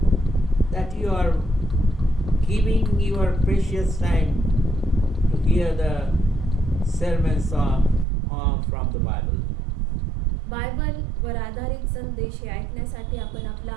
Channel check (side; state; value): left; drops out; at 8.1 s